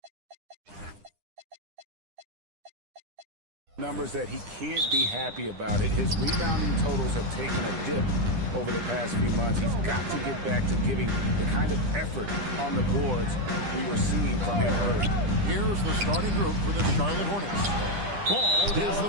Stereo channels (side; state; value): left; late; 10 ms